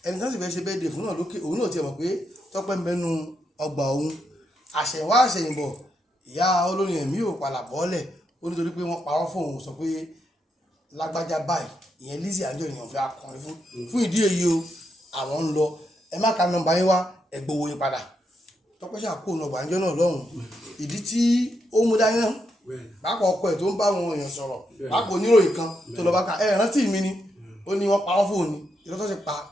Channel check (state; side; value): normal; both; correlation 0.82